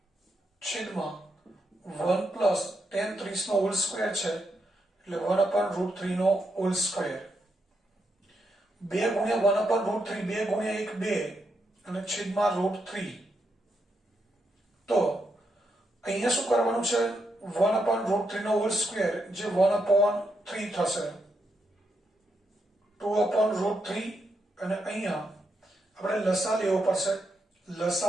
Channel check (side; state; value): both; normal; correlation 0.82